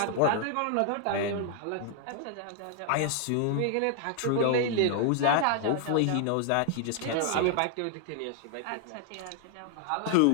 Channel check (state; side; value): different; both; correlation 0.00